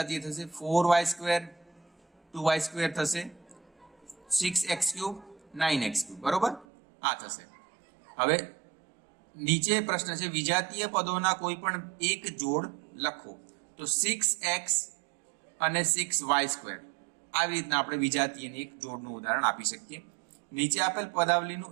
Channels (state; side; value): drops out; left; at 6.7 s